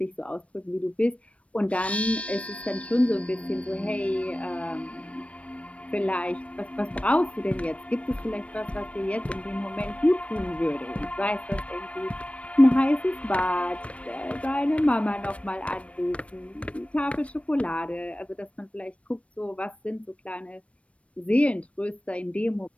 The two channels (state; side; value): late; right; 0.063 ms